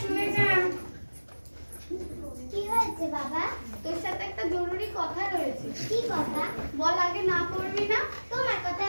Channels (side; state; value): both; inverted; correlation -1.00